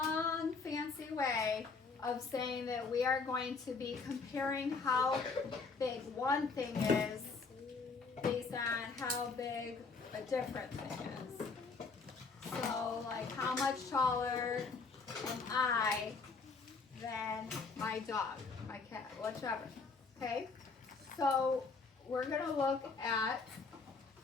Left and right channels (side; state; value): right; quieter; 4.5 dB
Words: fancy way of saying that we are going to be comparing how big one thing is based on how big a different thing is. So, like, how much taller am I than my dog, my cat, whichever. Okay? So, we're going to look at,